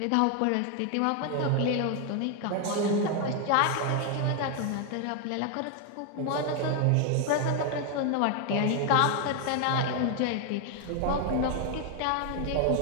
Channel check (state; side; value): different; both; correlation 0.01